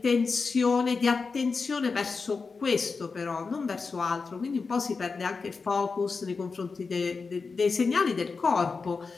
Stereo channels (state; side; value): quieter; right; 4.6 dB